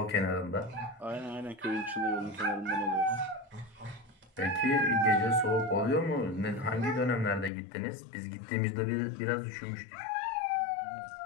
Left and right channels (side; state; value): right; drops out; at 7.5 s